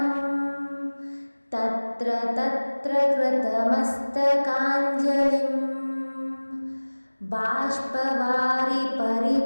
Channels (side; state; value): both; inverted; correlation -1.00